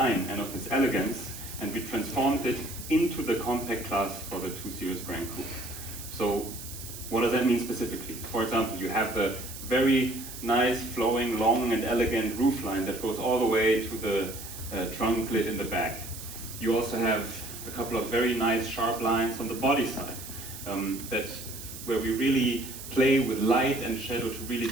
and of its elegance, and we transformed it into the compact class for the 2 Series Gran Coupe. So what does that mean specifically? For example, you have the very nice, flowing, long and elegant roofline that goes all the way to the trunk lid in the back. You also have a couple of very nice sharp lines on the body side where we really play with light and shadow to really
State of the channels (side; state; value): right; noise; hiss, 12 dB below the sound